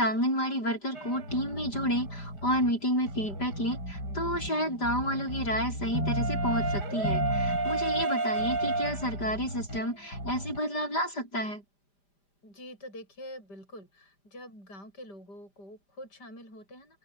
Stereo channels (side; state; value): right; late; 5.0 ms